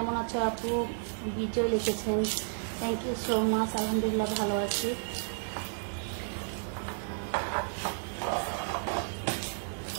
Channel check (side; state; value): left; silent; digital silence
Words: আছো আপু? বিজয় লিখেছেন, থ্যাংক ইউ সো মাচ। আলহামদুলিল্লাহ ভালো আছি।